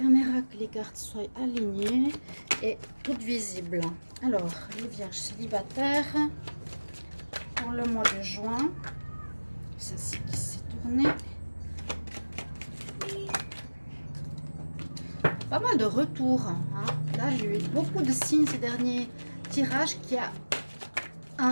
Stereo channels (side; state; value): both; inverted; correlation -1.00